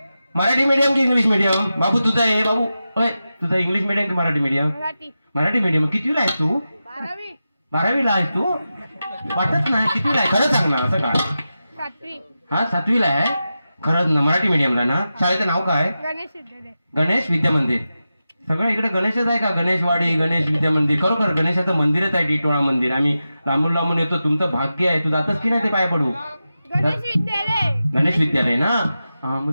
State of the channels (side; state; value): both; inverted; correlation -0.92